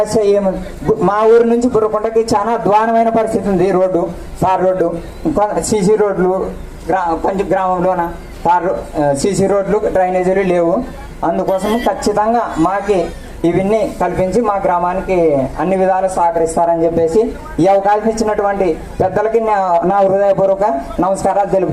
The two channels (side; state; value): both; identical; correlation 1.00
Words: మా ఊరు నుంచి బుర్రకుంటకి చాలా అధ్వానమైన పరిస్థితి ఉంది. రోడ్డు తార్ రోడ్డు, సీసీ రోడ్లు గ్రామంలోన సీసీ రోడ్లు, డ్రైనేజీలు లేవు. అందుకోసం ఖచ్చితంగా మాకి ఇవన్నీ కల్పించి మా గ్రామానికి అన్ని విధాలు సహకరిస్తారని చెప్పేసి ఈ అవకాశం ఇచ్చినటువంటి పెద్దలకి నా హృదయపూర్వక నమస్కారాలు